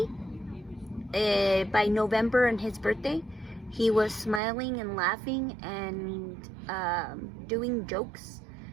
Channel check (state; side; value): drops out; left; at 4.4 s